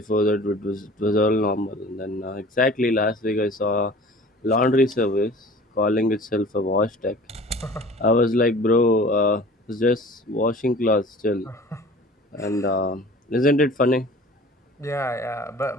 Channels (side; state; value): both; normal; correlation 0.44